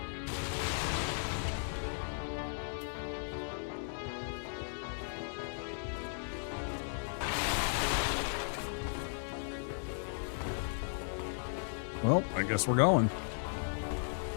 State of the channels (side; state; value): right; silent; digital silence